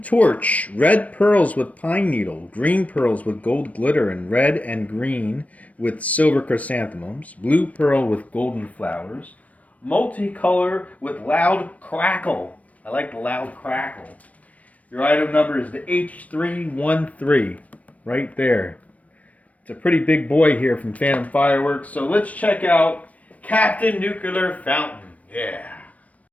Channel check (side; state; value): right; late; 0.069 ms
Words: torch, red pearls with pine needle, green pearls with gold glitter, and red and green with silver chrysanthemums, blue pearl with golden flowers, multicolor with loud crackle. I like the loud crackle. Your item number is the H313, right there. It's a pretty big boy here from Phantom Fireworks, so let's check out Captain Nuclear Fountain. Yeah.